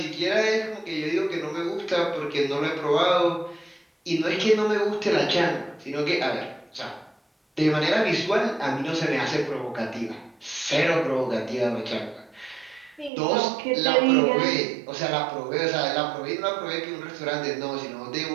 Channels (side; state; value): left; drops out; at 13.1 s